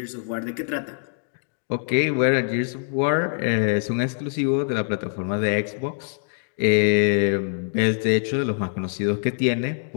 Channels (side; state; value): right; silent; digital silence